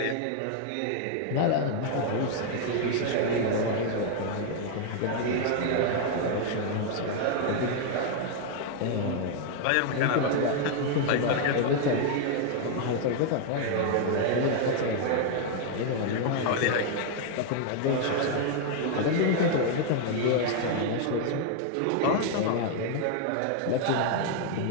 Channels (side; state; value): both; different; correlation 0.00